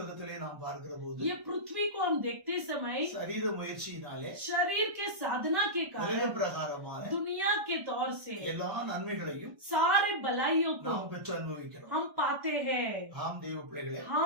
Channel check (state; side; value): late; left; 1.1 ms